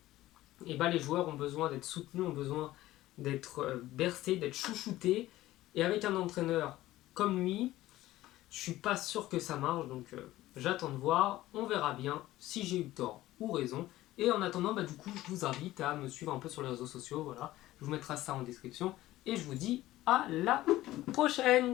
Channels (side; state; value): right; quieter; 16.0 dB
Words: et les joueurs ont besoin d'être soutenus, ont besoin d'être bercés, d'être chouchoutés. Et avec un entraîneur comme lui, je suis pas sûr que ça marche, donc j'attends de voir. On verra bien si j'ai eu tort ou raison. Et en attendant, du coup, je vous invite à me suivre un peu sur les réseaux sociaux. Voilà, je vous mettrai ça en description. Et je vous dis à la